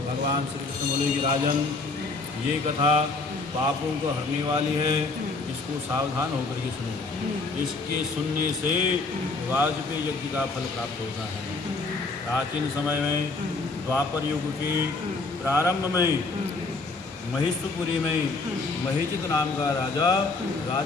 भगवान श्री कृष्ण बोले कि राजन, ये कथा पापों को हरने वाली है, इसको सावधान होकर के सुनो। इसके सुनने से वाजपेयी यज्ञ का फल प्राप्त होता है। प्राचीन समय में द्वापर युग के प्रारंभ में महिषपुरी में महिषित नाम का राजा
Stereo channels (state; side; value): quieter; right; 3.7 dB